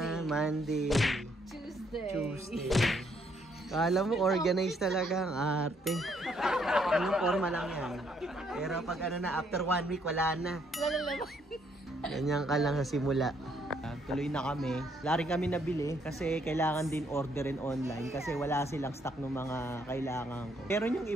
Monday. Tuesday. Kala mo organized talaga ang arte. Anong forma lang yan. Pero pag ano na, after 1 week, wala na. Lalalaman. Ganyan ka lang sa simula. Tuloy na kami. Wala rin kami nabili kasi kailangan din orderin online kasi wala silang stock ng mga kailangan ko. Pero yung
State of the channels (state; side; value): normal; both; correlation 0.70